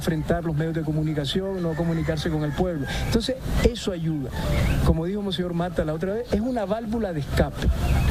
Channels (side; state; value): both; identical; correlation 1.00